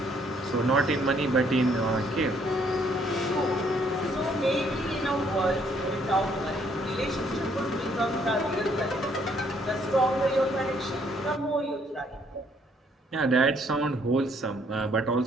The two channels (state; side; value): normal; both; correlation 0.66